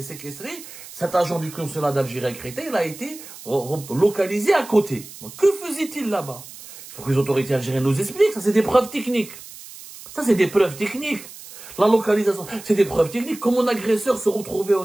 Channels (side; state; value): right; noise; hiss, 16 dB below the sound